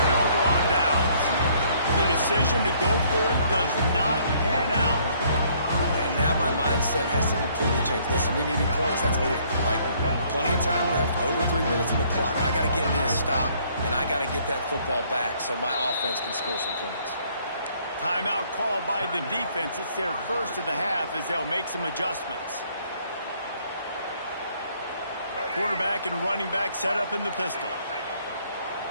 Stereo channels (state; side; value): inverted; both; correlation -0.63